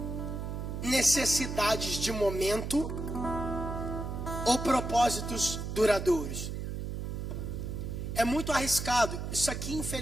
Necessidades de momento ou propósitos duradouros? É muito arriscado. Isso aqui,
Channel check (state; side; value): noise; right; hum, 5 dB below the sound